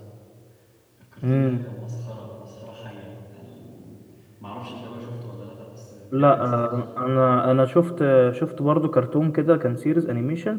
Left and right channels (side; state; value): both; identical; correlation 1.00